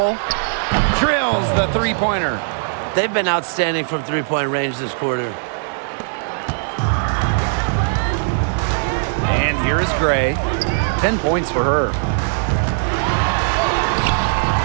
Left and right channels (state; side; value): silent; left; 65 dB below the other